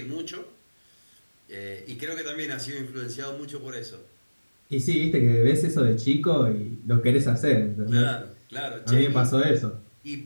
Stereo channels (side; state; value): both; inverted; correlation -1.00